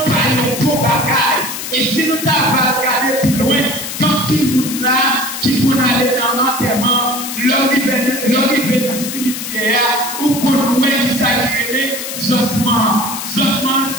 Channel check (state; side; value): noise; left; hiss, 6 dB below the sound